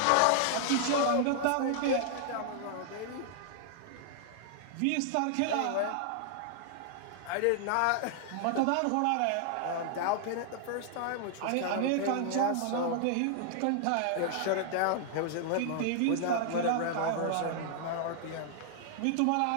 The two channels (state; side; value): different; both; correlation -0.01